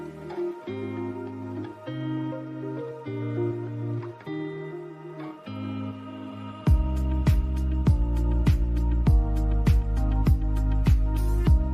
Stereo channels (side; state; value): both; identical; correlation 1.00